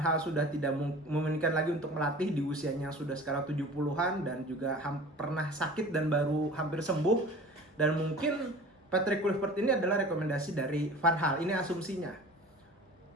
sudah tidak memungkinkan lagi untuk melatih di usianya sudah sekarang 70-an dan juga pernah sakit dan baru hampir sembuh. Dan mungkin Patrick Kluivert ini adalah rekomendasi dari Van Gaal, ini asumsinya.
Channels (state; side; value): normal; both; correlation 0.41